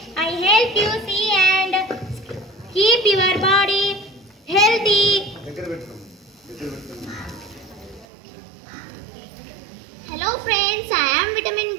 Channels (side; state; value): left; drops out; at 8.1 s